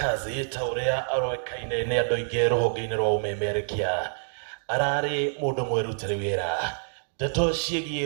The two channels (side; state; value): left; silent; digital silence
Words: ta ũrĩa aroĩkaine nĩ andũ aingĩ rũhonge-inĩ rwa ũmemerekia, ararĩ mũndũ mwĩrutĩre wĩra. Ndeto